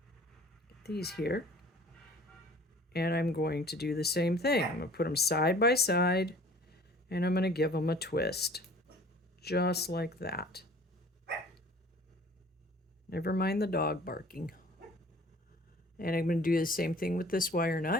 get these here. And I'm going to do the same thing. I'm going to put them side by side, and I'm going to give them a twist. Just like that. Never mind the dog barking. And I'm going to do the same thing with this wire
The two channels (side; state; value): both; normal; correlation 0.49